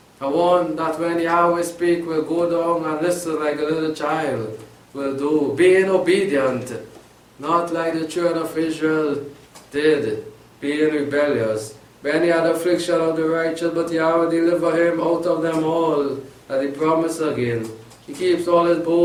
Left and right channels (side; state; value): both; identical; correlation 1.00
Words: A one that when Yahweh speak will go down and listen like a little child will do, being obedient, not like the children of Israel did, being rebellious. Many had affliction of the righteous, but Yahweh deliver him out of them all, that he promised again. He keeps all his